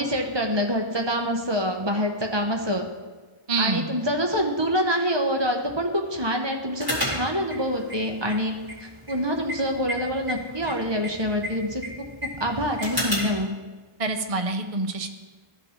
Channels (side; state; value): left; late; 1.1 ms